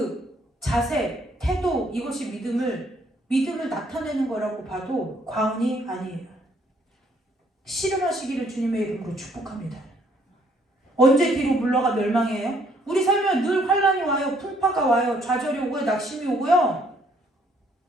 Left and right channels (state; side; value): normal; both; correlation 0.66